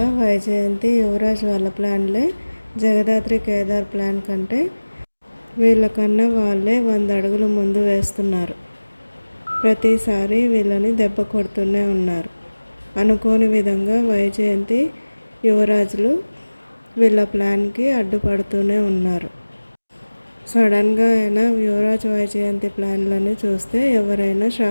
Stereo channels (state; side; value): inverted; both; correlation -1.00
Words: వైజయంతి యువరాజ్ వాళ్ళ ప్లాన్లే జగదాత్రి కేదార్ ప్లాన్ కంటే వీళ్ళకన్నా వాళ్ళే 100 అడుగులు ముందు వేస్తున్నారు. ప్రతిసారి వీళ్ళని దెబ్బ కొడుతూనే ఉన్నారు. అనుకోని విధంగా వైజయంతి యువరాజులు వీళ్ళ ప్లాన్కి అడ్డుపడుతూనే ఉన్నారు. సడన్గా అయినా యువరాజ్ వైజయంతి ప్లాన్లని చూస్తే ఎవరైనా